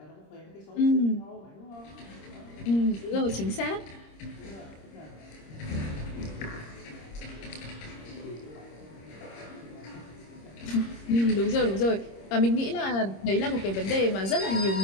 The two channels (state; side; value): late; right; 26 ms